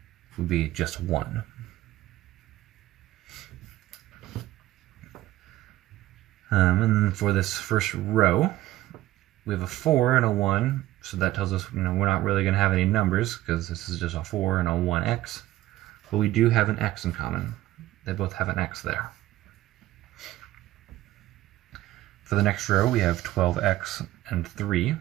would be just 1. And then for this first row, we have a 4 and a 1, so that tells us we're not really going to have any numbers because this is just a 4 and a 1x. But we do have an x in common. They both have an x there. For the next row, we have 12x and 3.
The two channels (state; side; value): quieter; left; 15.3 dB